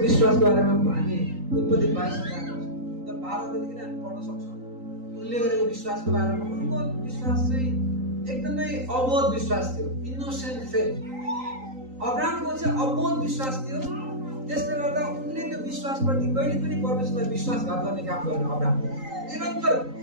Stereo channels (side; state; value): left; late; 3.8 ms